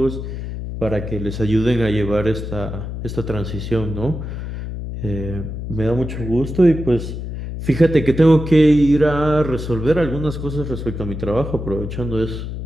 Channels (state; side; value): noise; left; hum, 7 dB below the sound